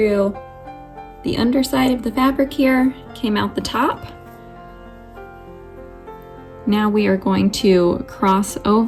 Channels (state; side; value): identical; both; correlation 1.00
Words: the underside of the fabric here, came out the top. Now we are going to cross